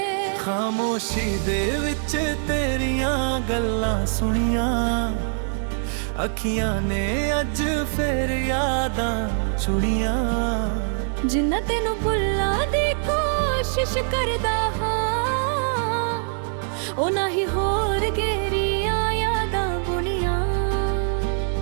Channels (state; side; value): silent; left; 63 dB below the other